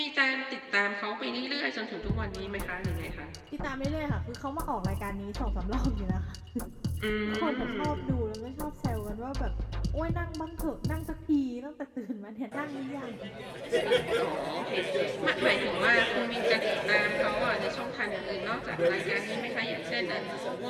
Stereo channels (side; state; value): both; identical; correlation 1.00